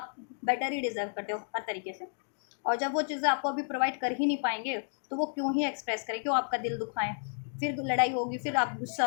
बेटर ही डिजर्व करते हो हर तरीके से। और जब वो चीज़ें आपको अभी प्रोवाइड कर ही नहीं पाएंगे, तो वो क्यों ही एक्सप्रेस करें, क्यों आपका दिल दुखाएं, फिर लड़ाई होगी, फिर आप गुस्सा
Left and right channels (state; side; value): silent; right; digital silence